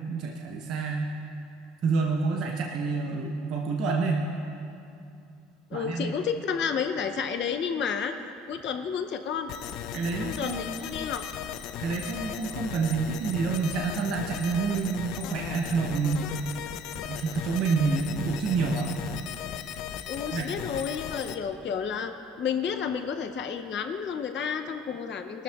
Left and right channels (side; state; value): both; normal; correlation 0.53